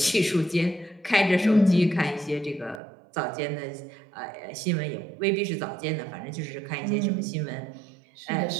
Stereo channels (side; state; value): left; drops out; at 2.8 s